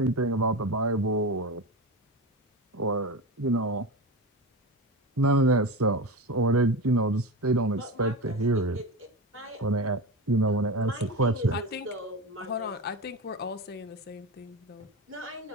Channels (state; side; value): normal; both; correlation 0.22